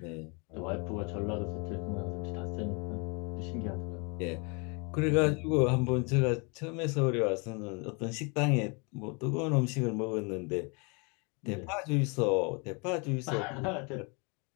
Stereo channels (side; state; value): right; quieter; 32.3 dB